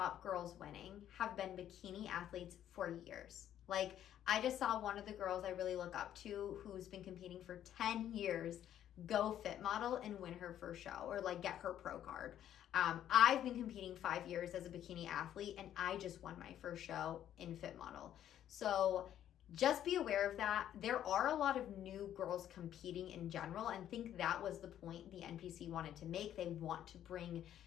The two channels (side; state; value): right; quieter; 11.0 dB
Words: girls winning have been bikini athletes for years. Like, I just saw one of the girls I really look up to, who's been competing for 10 years, go Fit Model and win her first show, or like get her pro card. I've been competing 5 years as a bikini athlete, and I just won my first show in Fit Model. So just be aware of that. There are a lot of new girls competing in general, and I think that was the point the NPC wanted to make. They want to bring